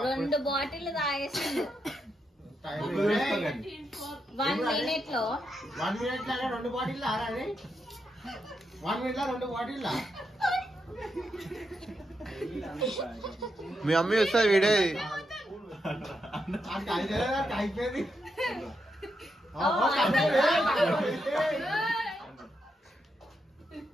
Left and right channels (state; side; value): normal; both; correlation 0.83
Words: రెండు బాటిల్ తాగేసిండు 1 minute లో. 1 minute లో 2 బాటిల్ ఆరాలి. 1 minute లో 2 బాటిల్. మీ అమ్మ వస్తా వీడే అయిపోయింది.